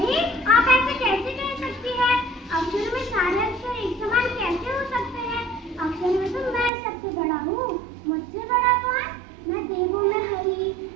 आप ऐसे कैसे कह सकती हैं? अक्षर में सारे अक्षर एक समान कैसे हो सकते हैं? अक्षर में तो मैं सबसे बड़ा हूँ। मुझसे बड़ा कौन? मैं देवों में हरि,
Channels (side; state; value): left; drops out; at 6.7 s